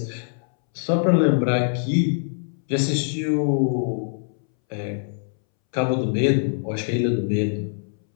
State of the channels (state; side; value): silent; right; 63 dB below the other